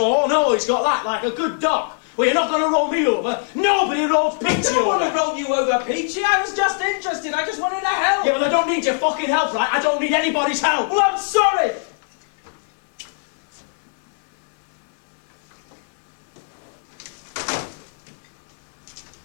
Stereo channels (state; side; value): silent; right; digital silence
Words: oh, no, he's got that, like a good dog. Well, you're not going to roll me over. Nobody rolls Peachy over. I don't want to roll you over, Peachy. I was just interested. I just wanted to help. Yeah, well, I don't need your fucking help, right? I don't need anybody's help. Well, I'm sorry.